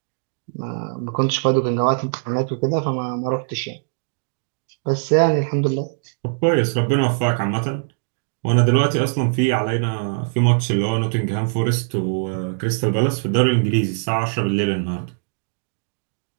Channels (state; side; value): silent; left; digital silence